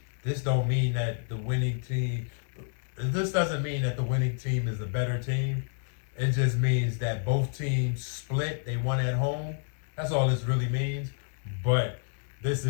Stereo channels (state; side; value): silent; right; 58 dB below the other